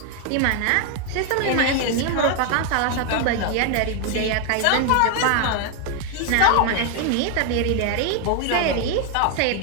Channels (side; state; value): both; different; correlation 0.01